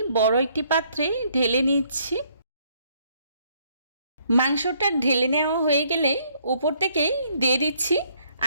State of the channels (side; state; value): both; inverted; correlation -0.67